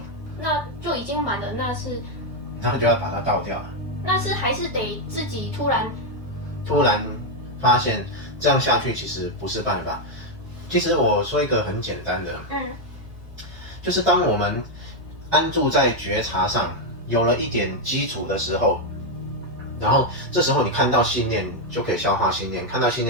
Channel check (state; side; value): normal; both; correlation 0.02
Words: 那就已经满了，然后就要把它倒掉了。那是还是得自己突然发现这样下去其实不是办法。其实我说一个很简单的，就是当我们安住在觉察上，有了一点基础的时候，然后这时候你看到信念就可以消化信念，看到信